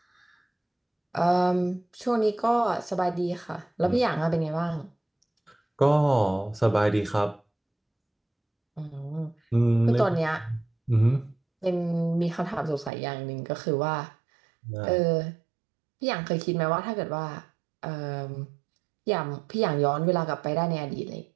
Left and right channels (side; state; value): left; drops out; at 12.9 s